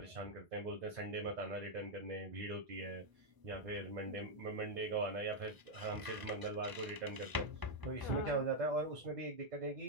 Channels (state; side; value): late; left; 1.0 ms